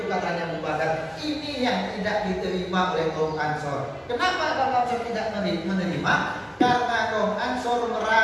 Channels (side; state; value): both; identical; correlation 1.00